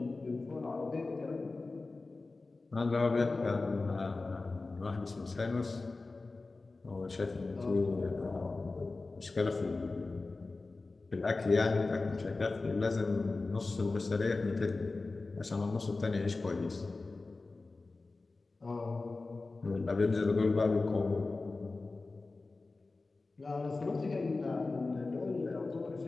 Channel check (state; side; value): quieter; right; 3.6 dB